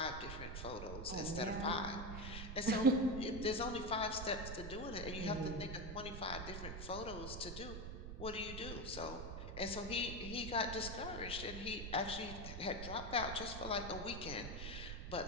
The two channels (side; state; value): right; noise; rumble, 6 dB below the sound